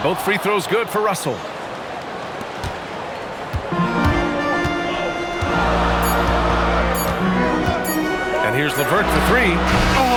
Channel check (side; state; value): both; identical; correlation 1.00